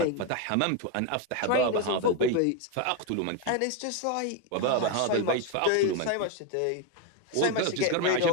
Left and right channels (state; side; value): different; both; correlation 0.02